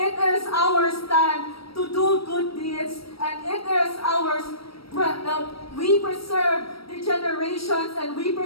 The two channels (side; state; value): right; late; 0.75 ms